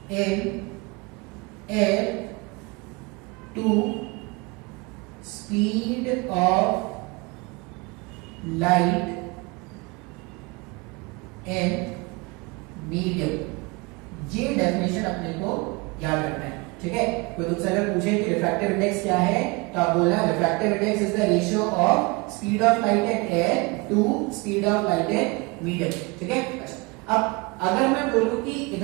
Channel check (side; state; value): left; quieter; 26.5 dB